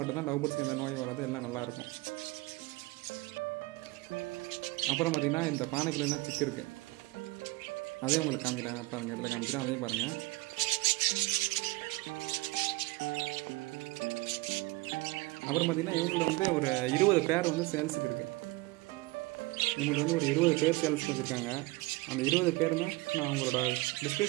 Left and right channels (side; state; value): left; quieter; 21.9 dB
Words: லவ் பேர்ட்ஸ்க்கு எந்த நோய் வராது, எல்லாம் நல்லாயிருக்கும். அப்புறம் பார்த்திங்கன்னா இந்த பானைக்குள்ள என்ன சிக்கு இருக்குது, அதையும் உங்களுக்கு காமிக்கிறேன் பாருங்கள். இடத்துல காமிக்கிறேன், அதையும் பாருங்கள். அப்புறம் பார்த்திங்கன்னா இவங்களில் ஒரு 20 பேர் சேல்ஸுக்கு இருக்குது. இவங்களுக்கு ஒரு 20 பேர் சேல்ஸுக்கு வச்சுருக்காங்க. அந்த 20 பேருமே நான் அவங்களோட